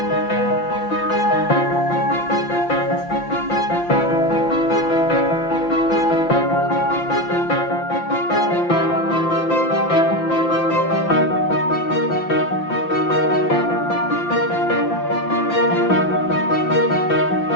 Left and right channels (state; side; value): late; right; 5.8 ms